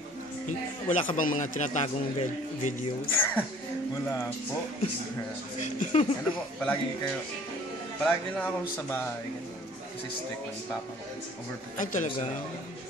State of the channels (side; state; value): both; normal; correlation 0.52